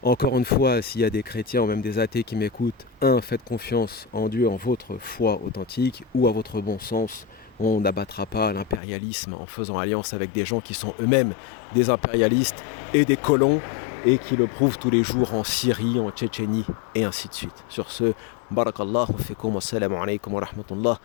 Encore une fois, s'il y a des chrétiens ou même des athées qui m'écoutent, faites confiance en Dieu, en votre foi authentique ou à votre bon sens. On n'abattra pas l'impérialisme en faisant alliance avec des gens qui sont eux-mêmes des impérialistes et des colons et qui le prouvent tous les jours en Syrie, en Tchétchénie et ainsi de suite. Sur ce, barakallahu fikum, wassalamu alaikum wa rahmatullah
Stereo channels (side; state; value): right; drops out; at 8.8 s